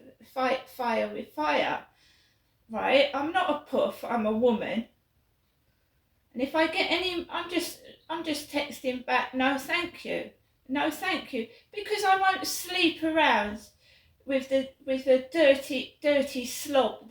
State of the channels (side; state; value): both; identical; correlation 1.00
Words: fight fire with fire, right? I'm not a poof. I'm a woman. And if I get any, I'm just texting back, no thank you, no thank you, because I won't sleep around with the dirty slob